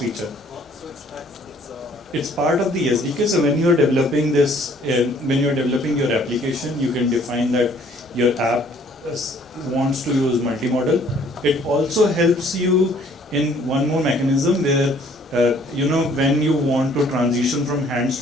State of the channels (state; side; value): normal; both; correlation 0.59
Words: It's part of the SDK. So when you're developing this, when you're developing your application, you can define that your app wants to use multimodal. It also helps you in one more mechanism where when you want to transition from hands